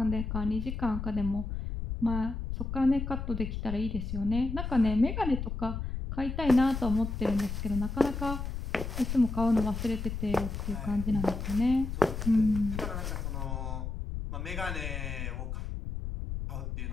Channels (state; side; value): noise; left; rumble, 4 dB below the sound